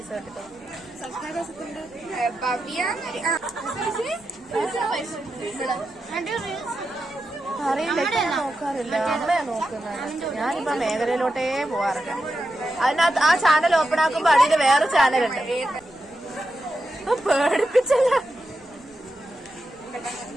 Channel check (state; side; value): noise; left; rumble, 28 dB below the sound